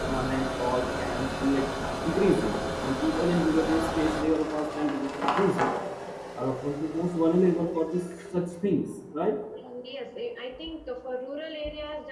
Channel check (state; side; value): identical; both; correlation 1.00